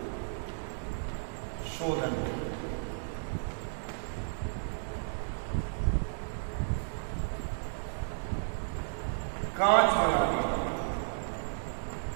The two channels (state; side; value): silent; left; digital silence